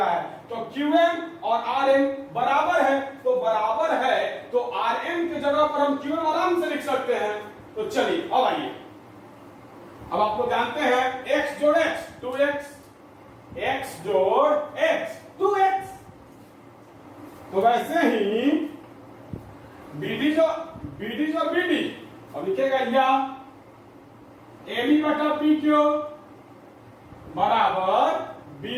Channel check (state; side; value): identical; both; correlation 1.00